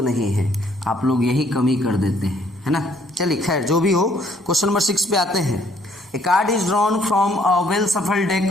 नहीं है। आप लोग यही कमी कर देते हैं, है ना। चलिए खैर जो भी हो, क्वेश्चन नंबर 6 पे आते हैं। A card is drawn from a well shuffled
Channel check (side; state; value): both; normal; correlation 0.64